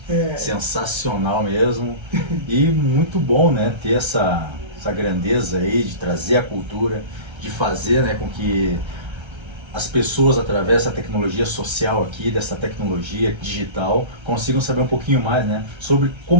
Sensacional mesmo. E muito bom, né, ter essa grandeza aí de trazer a cultura, de fazer, né, com que as pessoas, através da tecnologia social aqui, dessa tecnologia digital, consigam saber um pouquinho mais, né, sobre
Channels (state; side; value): late; left; 1.3 ms